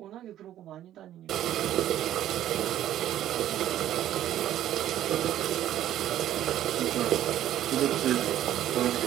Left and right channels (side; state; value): left; quieter; 12.2 dB